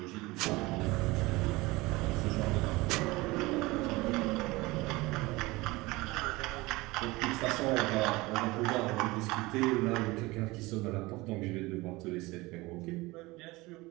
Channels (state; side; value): quieter; left; 21.7 dB